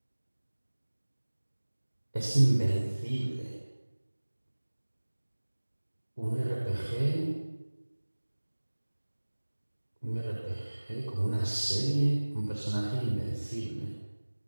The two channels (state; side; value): inverted; both; correlation -1.00